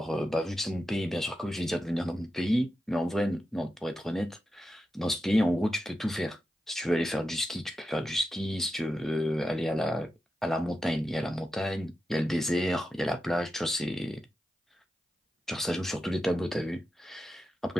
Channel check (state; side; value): normal; both; correlation 0.90